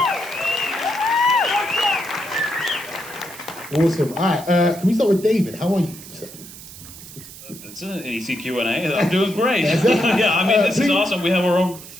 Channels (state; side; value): noise; right; hiss, 16 dB below the sound